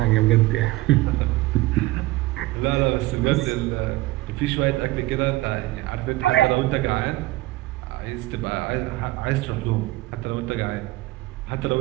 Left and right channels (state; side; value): quieter; left; 18.7 dB